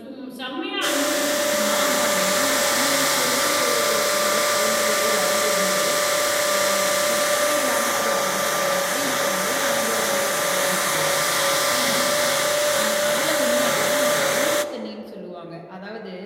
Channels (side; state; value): both; identical; correlation 1.00